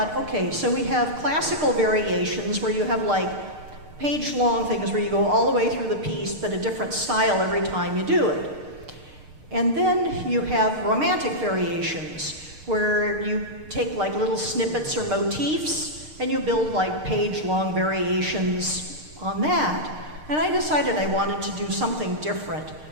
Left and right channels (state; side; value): late; left; 6.6 ms